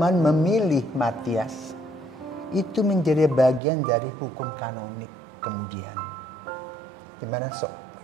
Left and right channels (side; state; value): left; drops out; at 3.6 s